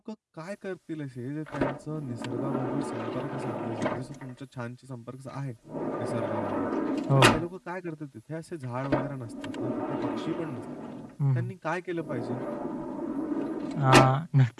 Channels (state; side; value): identical; both; correlation 1.00